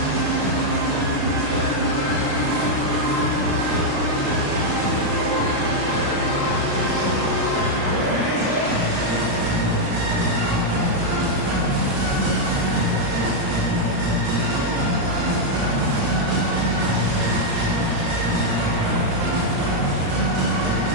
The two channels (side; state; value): left; late; 35 ms